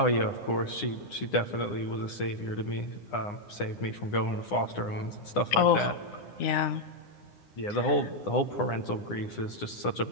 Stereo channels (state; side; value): late; right; 9.8 ms